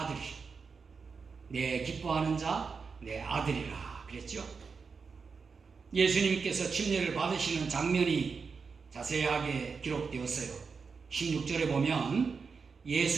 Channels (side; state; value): left; quieter; 5.2 dB